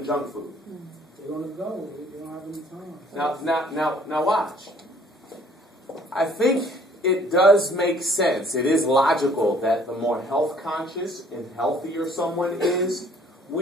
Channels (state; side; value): normal; both; correlation 0.58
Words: junk food? They're gonna go. They don't have any time. Now watch. I think it does make sense. It is logical that the more health conscious and healthier someone is,